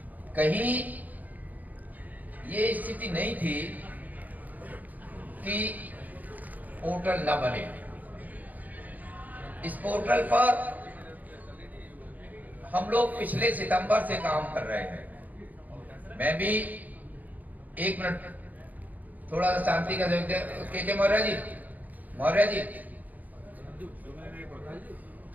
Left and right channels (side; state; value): left; late; 0.080 ms